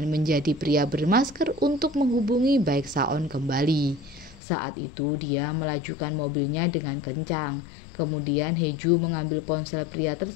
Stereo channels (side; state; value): right; drops out; at 4.4 s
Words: menjadi pria bermasker untuk menghubungi Baek Saon kembali. Saat itu dia melajukan mobilnya dengan kencang. Kemudian Heju mengambil ponsel pria